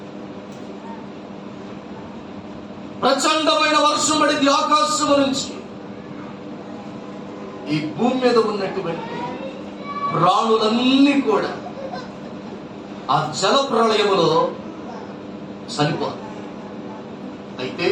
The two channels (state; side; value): identical; both; correlation 1.00